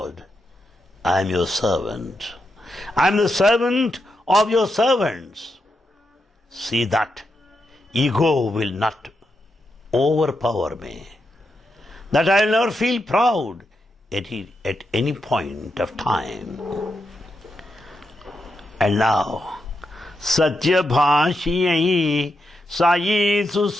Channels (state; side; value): normal; both; correlation 0.85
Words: I am your servant. I am the servant of your servants. See that ego will not overpower me, that I will never feel proud at any point of time. And now, Sathya Sai